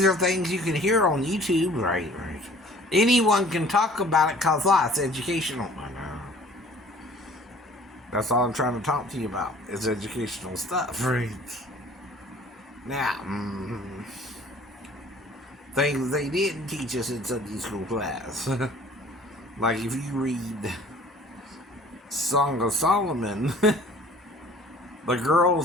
are things you can hear on YouTube, right? Anyone can talk about it because it's educational. I know. That's all I'm trying to talk to you about is educational stuff, right? Now, things they didn't teach us in Sunday school class. Like if you read Song of Solomon, the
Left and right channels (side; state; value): both; normal; correlation 0.51